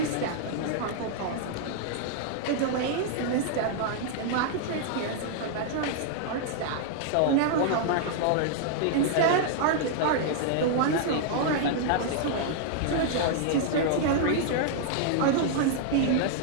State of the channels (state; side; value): different; both; correlation -0.01